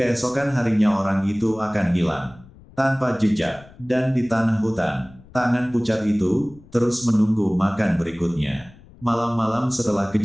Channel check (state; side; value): noise; left; rumble, 24 dB below the sound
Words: harinya orang itu akan hilang tanpa jejak, dan di tanah hutan, tangan pucat itu terus menunggu makan berikutnya. Malam-malam setelah